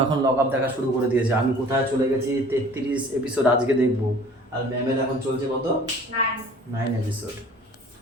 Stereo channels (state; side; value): normal; both; correlation 0.49